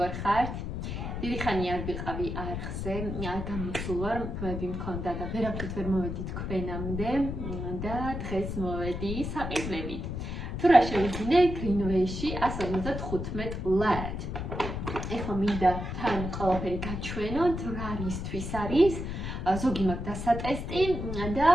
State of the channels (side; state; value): left; noise; rumble, 5 dB below the sound